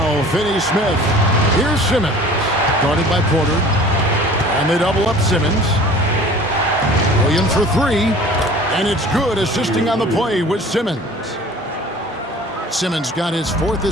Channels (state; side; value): normal; both; correlation 0.45